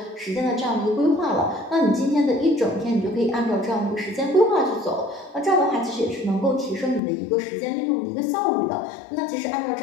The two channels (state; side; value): drops out; right; at 7.0 s